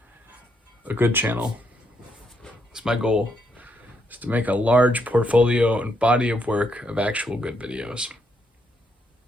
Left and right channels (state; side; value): normal; both; correlation 0.76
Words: a good channel. It's my goal, is to make a large portfolio and body of work of actual good videos.